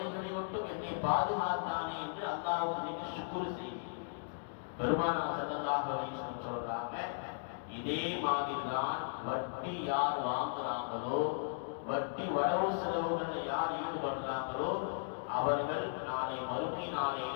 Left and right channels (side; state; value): right; silent; digital silence